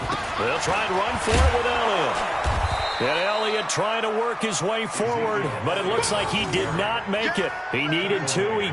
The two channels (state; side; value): identical; both; correlation 1.00